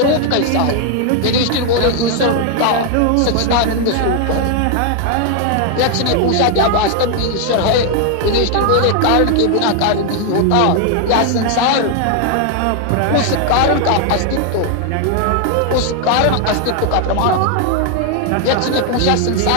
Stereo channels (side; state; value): both; different; correlation 0.00